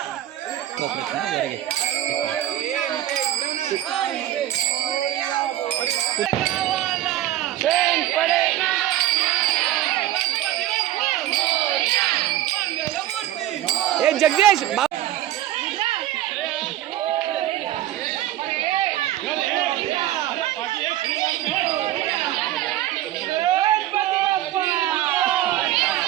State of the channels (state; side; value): quieter; left; 13.6 dB